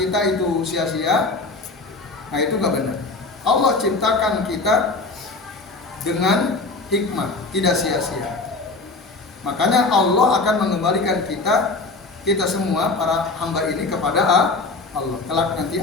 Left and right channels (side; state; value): right; quieter; 3.6 dB